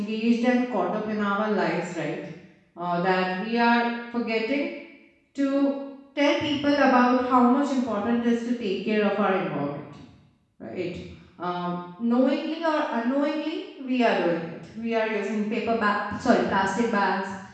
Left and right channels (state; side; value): identical; both; correlation 1.00